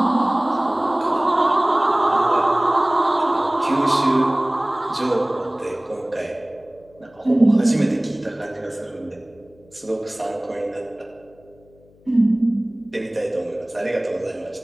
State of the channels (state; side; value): noise; left; hum, 29 dB below the sound